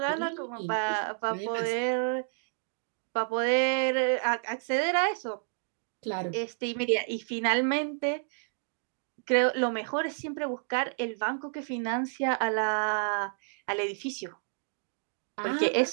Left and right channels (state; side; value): silent; left; digital silence